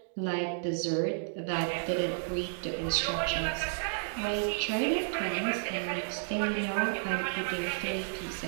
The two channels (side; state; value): left; silent; digital silence